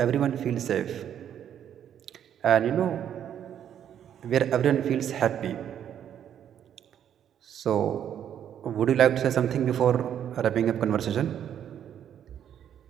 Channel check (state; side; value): quieter; left; 9.6 dB